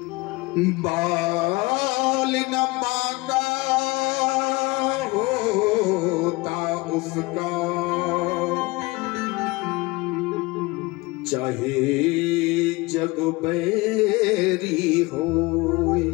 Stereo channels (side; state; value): right; quieter; 23.2 dB